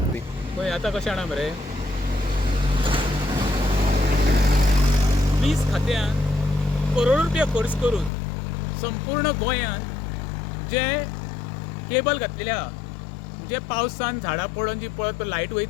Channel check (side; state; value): right; drops out; at 8.1 s